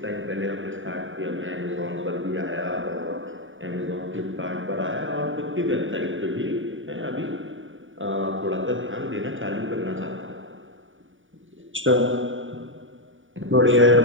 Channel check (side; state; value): left; late; 0.57 ms